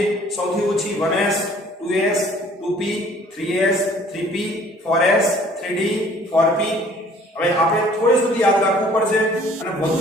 સૌથી ઓછી 1s 2s 2p 3s 3p 4s 3d 4p. હવે આપણે થોડી સુધી યાદ રાખવું પડશે, અને વધુ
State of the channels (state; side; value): normal; both; correlation 0.54